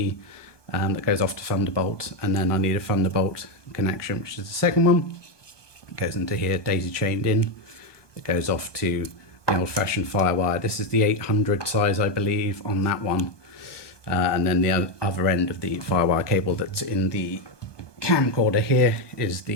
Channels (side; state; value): right; late; 1.2 ms